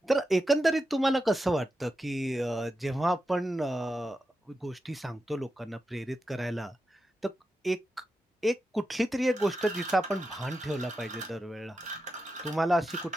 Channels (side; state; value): both; normal; correlation 0.89